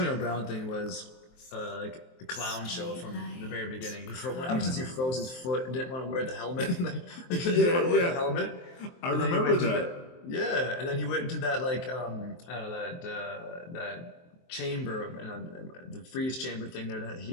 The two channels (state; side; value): late; right; 23 ms